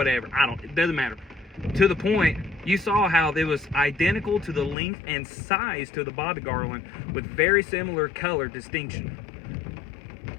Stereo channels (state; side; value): drops out; right; at 4.8 s